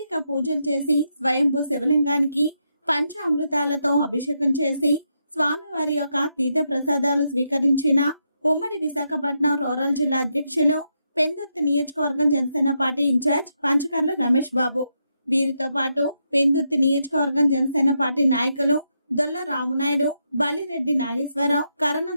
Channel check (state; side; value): inverted; both; correlation -0.82